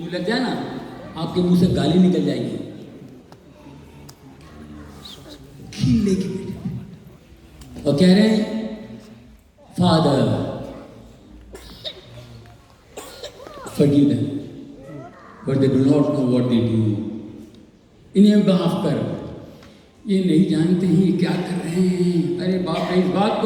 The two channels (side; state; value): both; identical; correlation 1.00